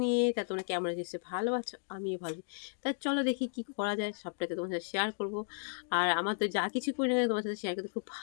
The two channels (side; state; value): right; silent; digital silence